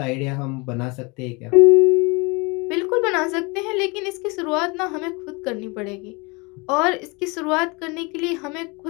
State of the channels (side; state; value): right; quieter; 28.2 dB